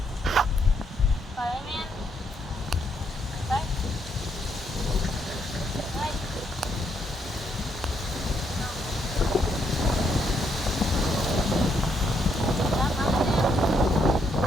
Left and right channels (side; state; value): both; normal; correlation 0.75